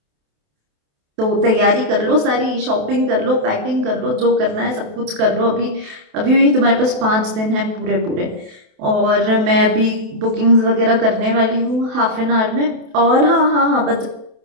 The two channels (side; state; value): left; late; 28 ms